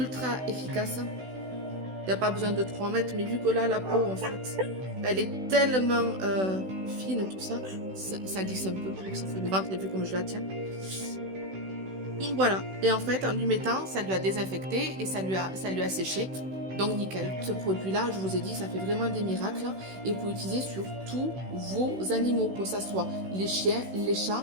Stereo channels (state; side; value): late; left; 16 ms